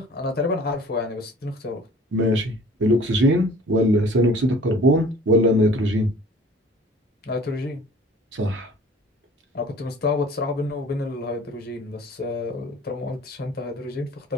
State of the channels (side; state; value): both; normal; correlation 0.48